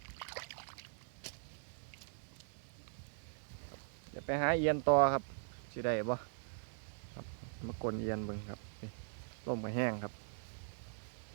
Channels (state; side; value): silent; left; 50 dB below the other